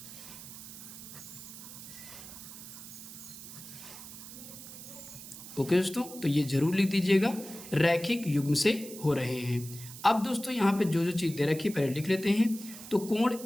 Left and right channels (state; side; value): noise; right; hiss, 13 dB below the sound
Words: ओके दोस्तों, तो ये जरूर लिख दीजिएगा, रैखिक युग्म से हो रहे हैं। अब दोस्तों यहाँ पे जो चीज़ दे रखी है पहले लिख लेते हैं। तो कोण